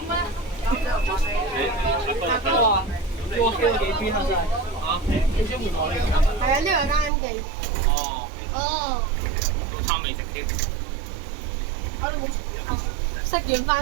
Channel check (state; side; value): drops out; left; at 7.1 s